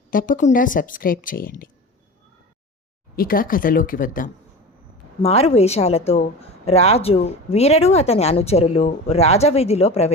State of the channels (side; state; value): both; normal; correlation 0.32